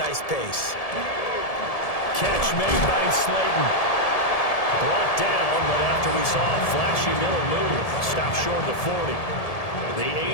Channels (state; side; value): late; right; 1.7 ms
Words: pace. Catch made by Slayton. Brought down, but after we saw a flashy middle move, stopped short of the 40. The